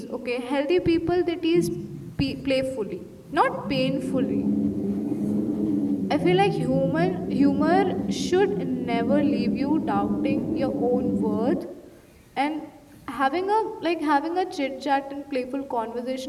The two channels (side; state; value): both; identical; correlation 1.00